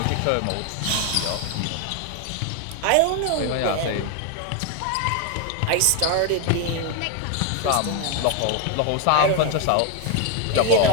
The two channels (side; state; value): both; different; correlation 0.01